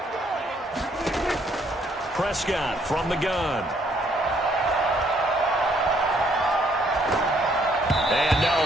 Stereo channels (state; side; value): normal; both; correlation 0.67